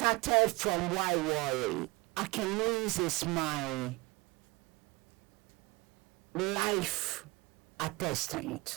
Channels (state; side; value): quieter; left; 24.1 dB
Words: from Why Worry. Akinese is my life